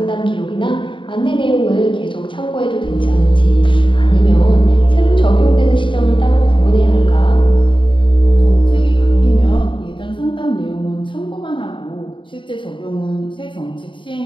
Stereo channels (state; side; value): late; right; 0.24 ms